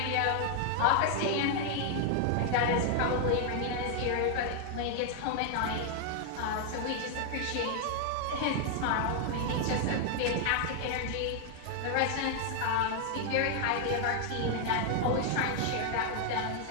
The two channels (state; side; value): different; both; correlation 0.00